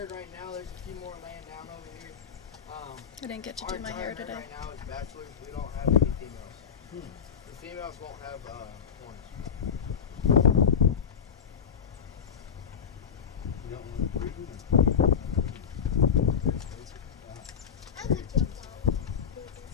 right now. There's a few more laying down over here. I didn't get to Our do my entire hair herd today. right now is bachelors. We don't have any females. The females won't have horns. You don't want to breed them? I'm gonna jump out.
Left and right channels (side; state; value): right; quieter; 7.3 dB